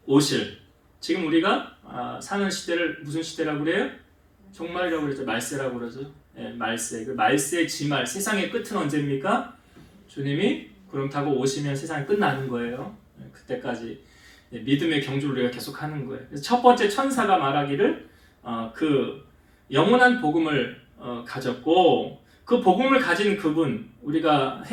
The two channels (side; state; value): both; identical; correlation 1.00